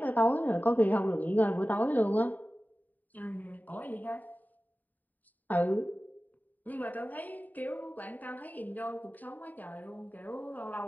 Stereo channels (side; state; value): right; late; 0.084 ms